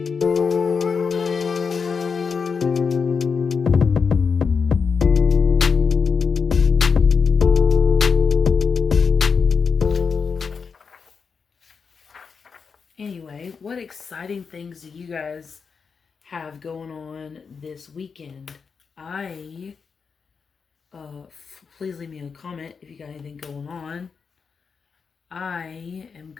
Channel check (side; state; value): right; quieter; 5.6 dB